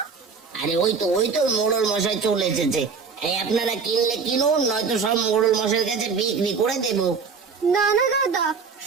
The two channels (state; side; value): quieter; left; 5.4 dB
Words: আরে ওই তো মোড়ল মশাই চলে এসেছে। এই আপনারা কিনলে কিনুন, নয়তো সব মোড়ল মশাইয়ের কাছে বিক্রি করে দেবো। না না দাদা,